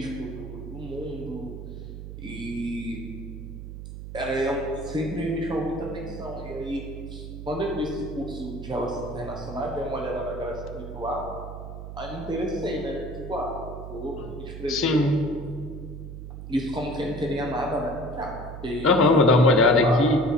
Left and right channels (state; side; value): noise; right; hum, 10 dB below the sound